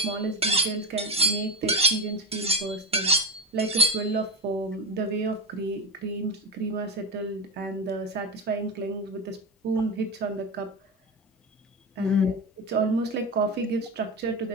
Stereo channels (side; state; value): both; normal; correlation 0.18